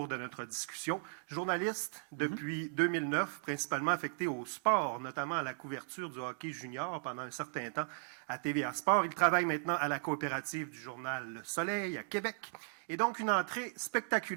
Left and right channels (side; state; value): left; silent; digital silence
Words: de notre discussion. Journaliste depuis 2009, principalement affecté au sport, notamment à la couverture du hockey junior pendant un certain temps à TVA Sport. Il travaille maintenant à la coopérative du journal Le Soleil à Québec. Et donc, une entrée